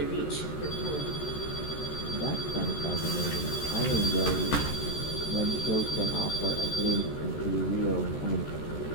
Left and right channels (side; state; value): right; late; 13 ms